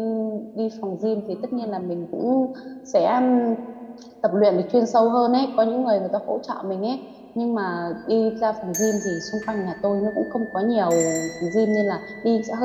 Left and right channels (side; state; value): both; identical; correlation 1.00